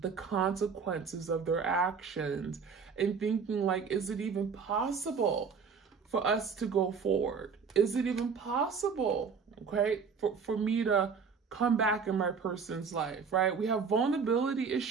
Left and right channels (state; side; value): quieter; left; 5.7 dB